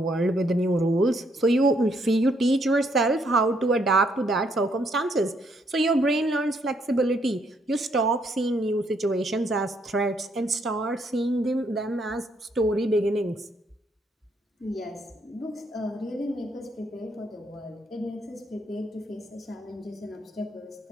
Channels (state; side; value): normal; both; correlation 0.72